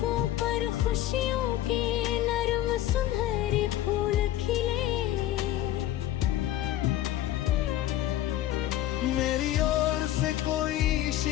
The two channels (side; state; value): right; quieter; 13.5 dB